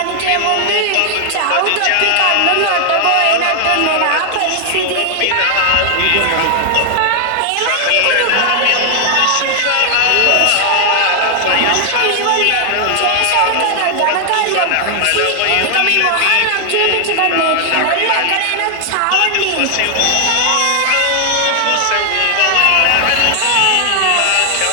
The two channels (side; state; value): both; different; correlation 0.00